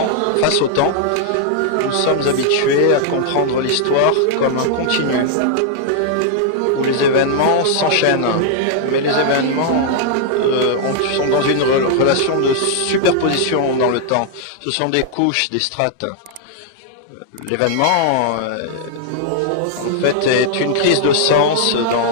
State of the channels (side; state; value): both; different; correlation -0.01